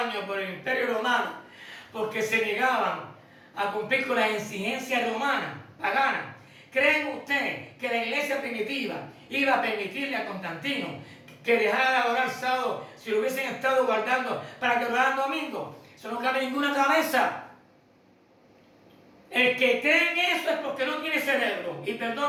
por el Imperio Romano, porque se negaban a cumplir con las exigencias romanas, paganas, ¿creen usted que la iglesia primitiva iba a permitirle a Constantino que dejara de adorar sábado si lo hubiesen estado guardando para que adoraran domingo? Eso no cabe en ninguna cabeza. El que cree en eso es porque no tiene cerebro. Y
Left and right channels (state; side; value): identical; both; correlation 1.00